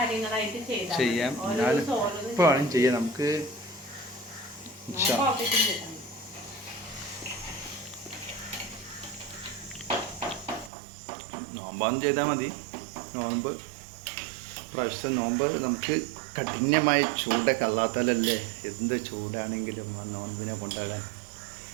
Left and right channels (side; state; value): left; drops out; at 10.7 s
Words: ചെയ്യാം. എന്നാലും ഇപ്പോഴാണ് ചെയ്യാം. നമുക്ക് നോമ്പാന്ന് ചെയ്താൽ മതി. നോമ്പ് പ്രാവശ്യത്തെ നോമ്പ് നമുക്ക് കഠിനമായ ചൂടൊക്കെ അല്ലാത്താലല്ലേ എന്ത് ചൂടാണെങ്കിലും ആ നോൻപിനെ കൊണ്ടാകാൻ.